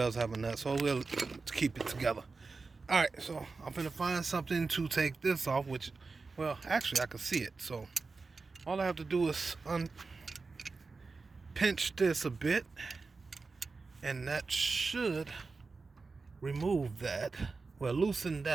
have a nut, so we'll keep it together. Alright, so I'm gonna find something to take this off, which, well, actually I can see it. So all I have to do is pinch this a bit, and that should remove that. Well, loosen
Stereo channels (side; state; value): left; quieter; 4.2 dB